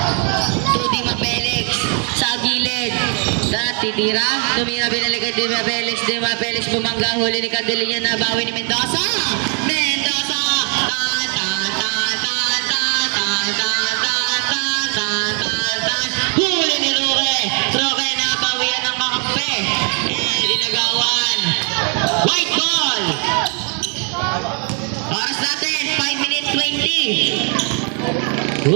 To Dema Felix. Sa gilid. Titira. Tumira binalikan Dema Felix. Dema Felix bumangga. Huli ni Candelinya. Nabawi ni Mendoza. Mendoza. Huli ni Roque. Roque nabawian ng kakampi. Dinagawan. White ball. Oras natin. 5 minutes 20.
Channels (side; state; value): left; quieter; 39.3 dB